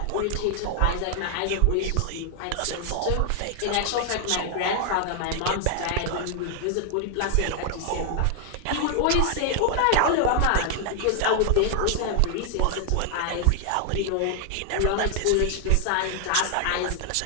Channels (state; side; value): different; both; correlation 0.00